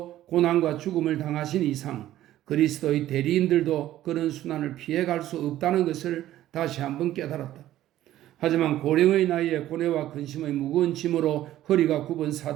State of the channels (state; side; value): quieter; left; 13.6 dB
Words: 고난과 죽음을 당하신 이상 그리스도의 대리인들도 그런 순환을 피해갈 수 없다는 것을 다시 한번 깨달았다. 하지만 고령의 나이에 고뇌와 근심의 무거운 짐으로 허리가 굽은